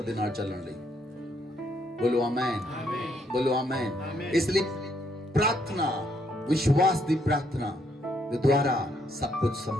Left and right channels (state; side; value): normal; both; correlation 0.72